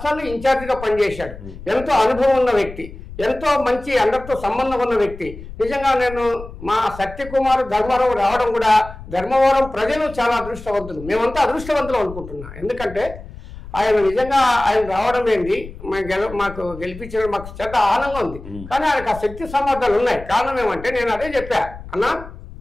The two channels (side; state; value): left; noise; rumble, 14 dB below the sound